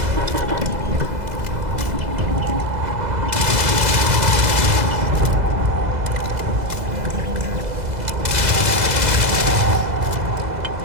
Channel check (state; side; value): late; left; 2.0 ms